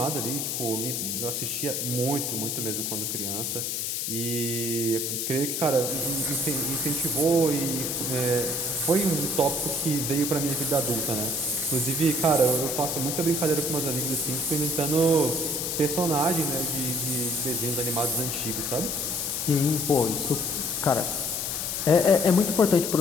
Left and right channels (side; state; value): left; noise; hiss, 1 dB below the sound